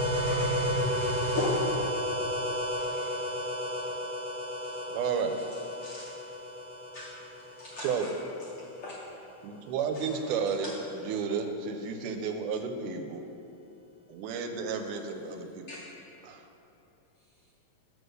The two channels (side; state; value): both; normal; correlation -0.02